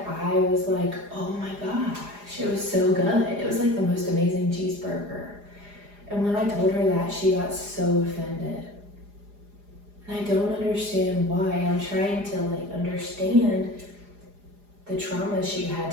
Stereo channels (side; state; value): left; late; 4.9 ms